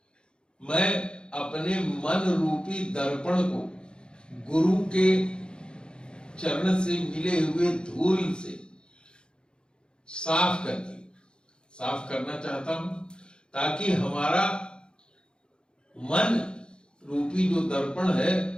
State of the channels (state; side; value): late; right; 0.051 ms